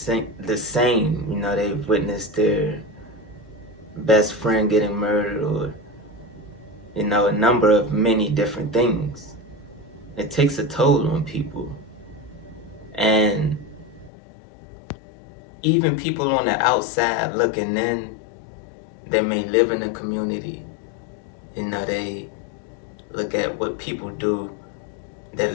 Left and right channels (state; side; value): drops out; right; at 14.1 s